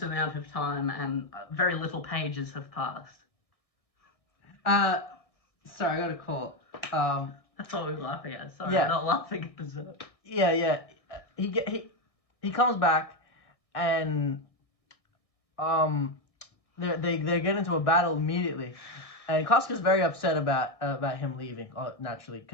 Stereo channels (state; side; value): late; right; 1.6 ms